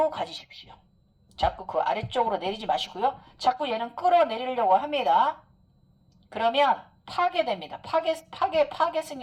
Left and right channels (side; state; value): both; identical; correlation 1.00